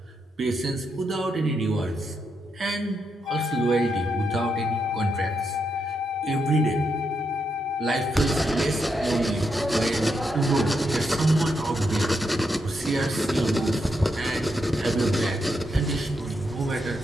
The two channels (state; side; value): normal; both; correlation 0.82